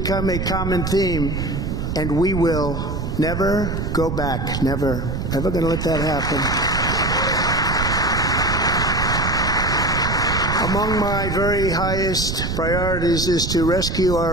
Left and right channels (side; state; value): right; noise; rumble, 2 dB below the sound